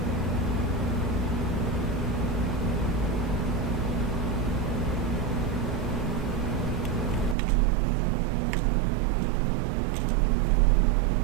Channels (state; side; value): drops out; left; at 7.4 s